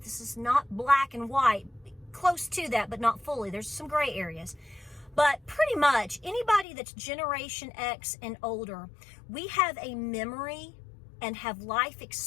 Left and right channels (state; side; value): drops out; right; at 6.7 s